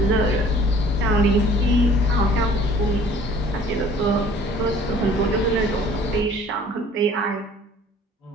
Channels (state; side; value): normal; both; correlation 0.52